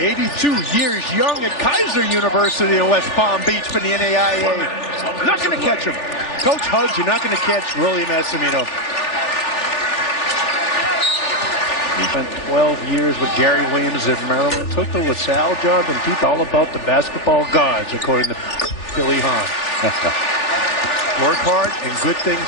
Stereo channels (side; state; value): right; late; 3.4 ms